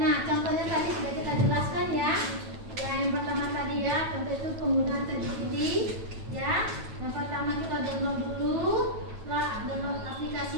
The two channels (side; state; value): left; late; 9.2 ms